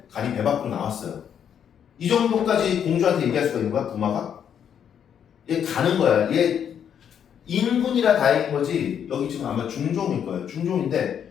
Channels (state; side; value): quieter; right; 8.6 dB